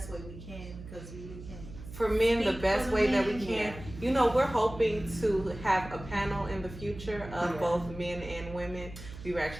way we can, because we can. For men, the best way that we can. We're hoping to have a panel in the future of both men and women. We were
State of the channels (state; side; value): noise; right; hum, 13 dB below the sound